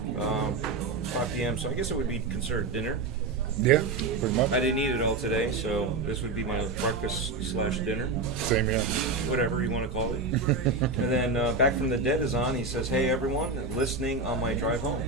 5 p.m., so I guess it would be considered dinner. Yeah, pretty much. I didn't eat it all today, so this would be my breakfast/dinner, Same here. whatever you want to call it. And then Back from the Dead is on. He says, "Hey everyone, listening on my drive home."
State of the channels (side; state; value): left; quieter; 3.7 dB